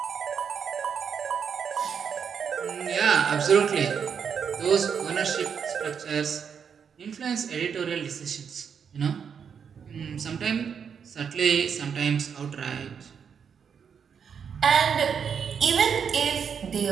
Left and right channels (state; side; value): quieter; left; 7.0 dB